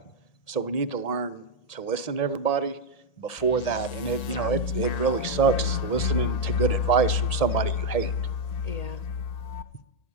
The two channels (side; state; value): right; late; 1.7 ms